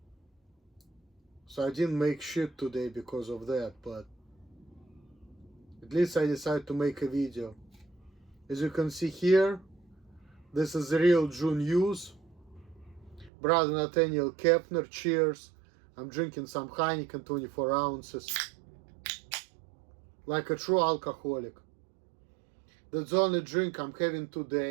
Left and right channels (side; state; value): left; drops out; at 13.3 s